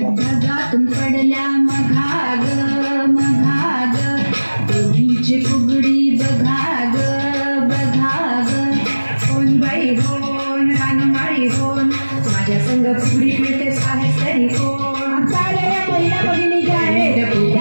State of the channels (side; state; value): both; inverted; correlation -1.00